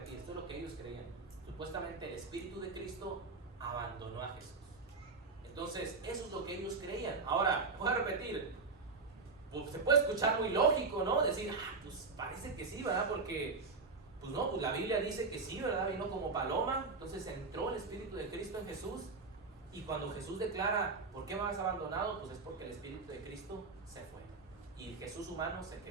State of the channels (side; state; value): left; quieter; 4.2 dB